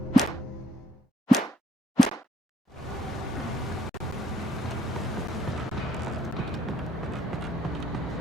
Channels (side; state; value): both; normal; correlation 0.68